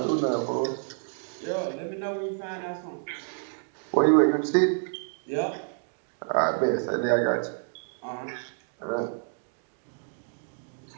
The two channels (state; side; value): silent; left; digital silence